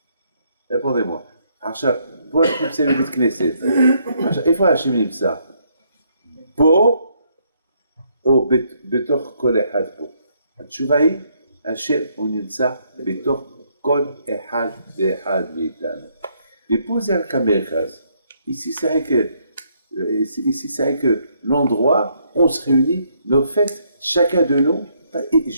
Répondez-moi. עכשיו, פה אנחנו נמצאים בבית כנסת. עכשיו, איפה השם נמצא? פה או בתוך כל אחד פה? התשובה היא, השם הוא נמצא בתוך כל אחד ואחד מאיתנו. ופה זה רק המרכז. Ici, c'est vrai que l'endroit, on se réunit, mais au fait, chacun de nous,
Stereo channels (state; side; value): inverted; both; correlation -0.71